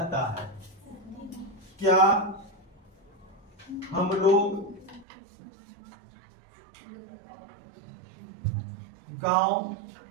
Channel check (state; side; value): drops out; left; at 5.1 s